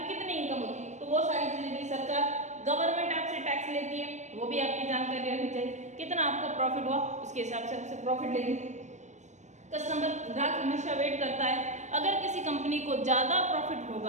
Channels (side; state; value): left; late; 0.34 ms